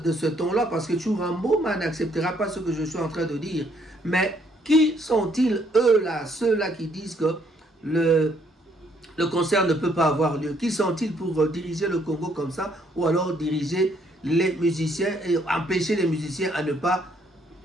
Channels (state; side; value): normal; both; correlation 0.68